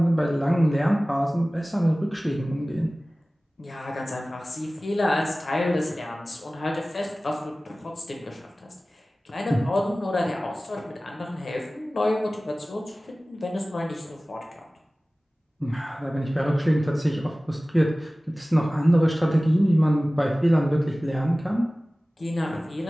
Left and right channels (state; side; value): normal; both; correlation 0.97